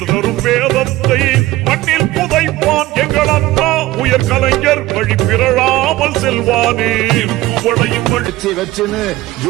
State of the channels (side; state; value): left; quieter; 17.3 dB